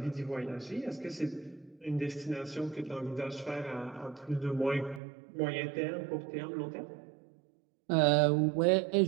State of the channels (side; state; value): left; drops out; at 5.0 s